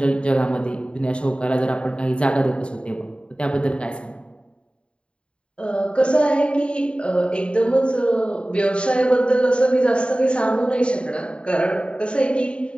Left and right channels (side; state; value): right; late; 0.055 ms